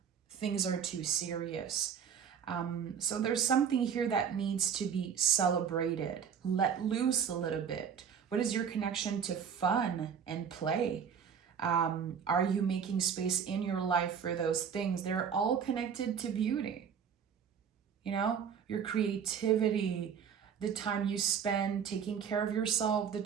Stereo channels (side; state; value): left; quieter; 7.4 dB